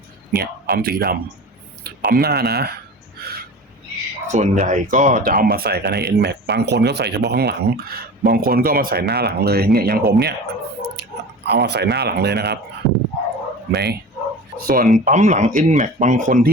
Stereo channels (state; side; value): normal; both; correlation 0.35